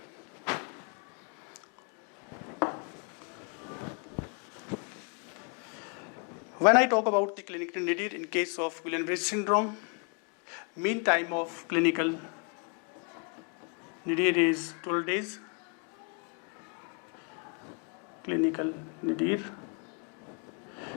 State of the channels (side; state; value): right; quieter; 37.4 dB